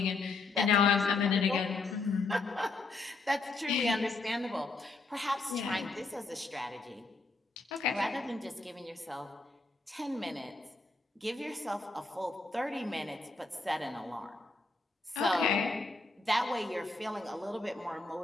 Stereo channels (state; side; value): quieter; right; 3.5 dB